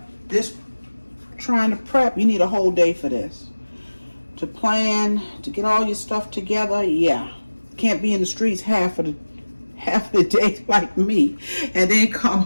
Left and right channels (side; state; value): both; inverted; correlation -1.00